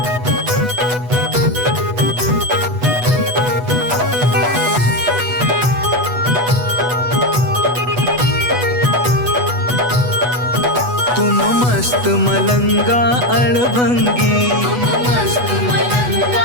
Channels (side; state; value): left; late; 8.1 ms